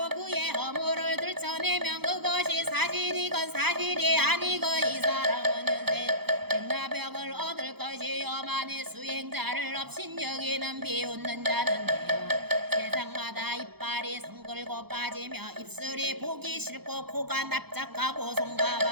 그의 허물을 들춰내면 그것이 사실이건 사실이 아니고 이 사람은 현세 백나병을 얻을 것이요. 만일 수행자를 없인 여기는 비웃는 자는 돼요. 세상마다 이빨이 성글고 빠지며 입술이 보기 싫고 코가 납작하고 손과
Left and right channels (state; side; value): late; left; 0.97 ms